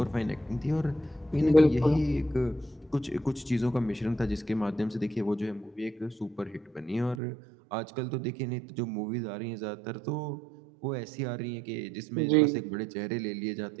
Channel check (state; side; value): drops out; left; at 7.2 s